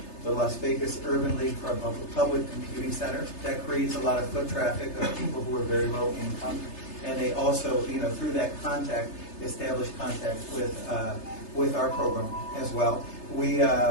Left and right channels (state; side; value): late; right; 3.3 ms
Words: the Las Vegas Urban League for a public computing center that creates a lot of foot traffic of people who are very low income, and they also, through that contact, establish contact with our program as well. We